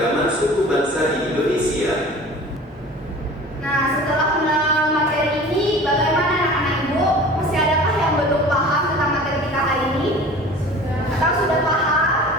suku bangsa di Indonesia. Nah, setelah mengenal materi ini, bagaimana anak-anak ibu? Masih adakah yang belum paham tentang materi kita hari ini? Atau sudah paham?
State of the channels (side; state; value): both; normal; correlation 0.42